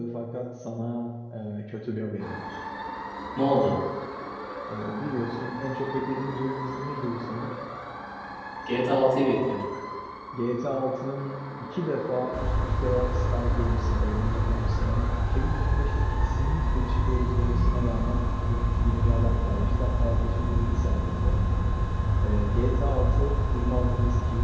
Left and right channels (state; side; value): identical; both; correlation 1.00